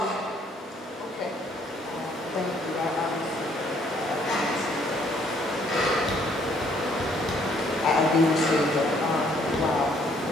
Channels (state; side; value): normal; both; correlation 0.65